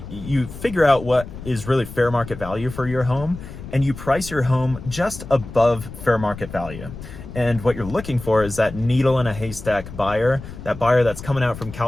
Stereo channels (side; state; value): left; noise; rumble, 12 dB below the sound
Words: figure out what is really fair market value for your home, and you price your home just above fair market value. And what you're looking for is that needle in a haystack buyer, that buyer that's coming out from